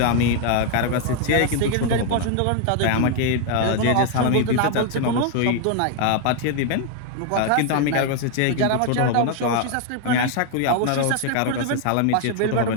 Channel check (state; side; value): different; both; correlation 0.00